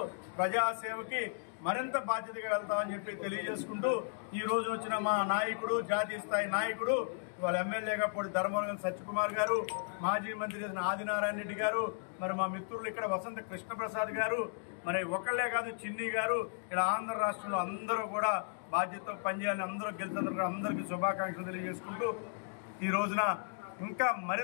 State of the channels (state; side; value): silent; right; digital silence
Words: ప్రజాసేవకి మరింత బాధ్యతగా వెళ్తామని చెప్పి తెలియజేసుకుంటూ ఈ రోజు వచ్చిన మా నాయకుడు, జాతీయ స్థాయి నాయకుడు, వాళ్ళ ఎమ్మెల్యేగా పొడి ధర్మవరం సత్యకుమార్ గారు, మాజీ మంత్రి ఆదినారాయణ రెడ్డి గారు, మరి మా మిత్రులు ఇక్కడ వసంత కృష్ణప్రసాద్ గారు, మరి ఒకళ్ళే కాదు చిన్ని గారు, ఇలా ఆంధ్ర రాష్ట్రంలో అందరూ కూడా బాధ్యతతో పనిచేయాలని, అందరూ గెలిచినందుకు అందరికీ శుభాకాంక్షలు తెలియజేసుకుంటూ ఈ రోజున ఇంకా